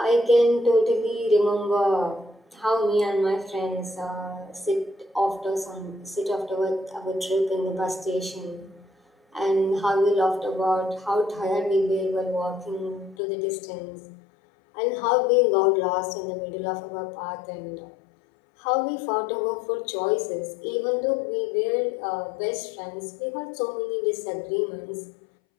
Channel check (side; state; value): right; drops out; at 13.2 s